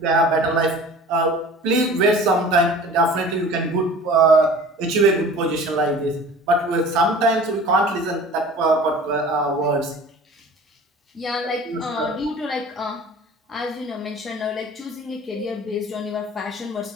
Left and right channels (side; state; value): both; normal; correlation 0.43